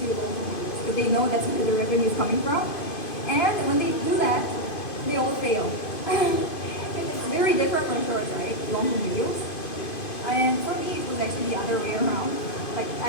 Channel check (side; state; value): right; late; 2.5 ms